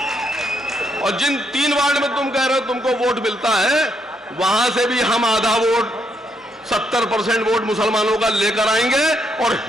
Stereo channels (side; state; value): both; normal; correlation 0.76